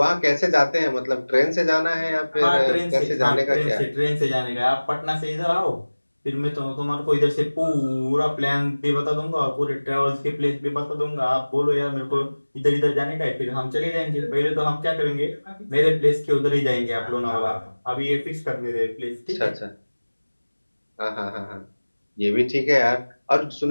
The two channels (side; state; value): both; inverted; correlation -1.00